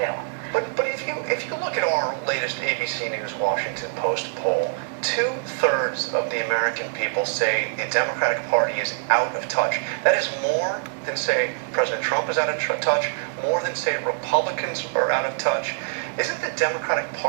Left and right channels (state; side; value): silent; left; digital silence